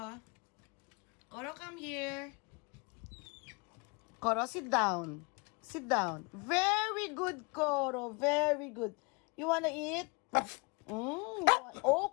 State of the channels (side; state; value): right; quieter; 30.0 dB